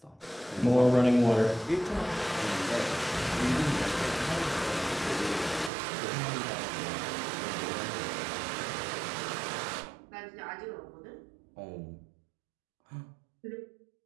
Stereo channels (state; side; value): drops out; left; at 5.7 s